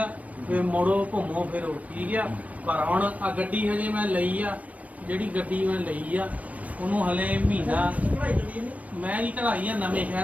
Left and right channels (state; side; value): late; left; 0.068 ms